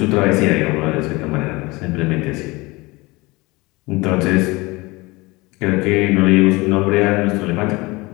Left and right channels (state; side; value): quieter; right; 23.3 dB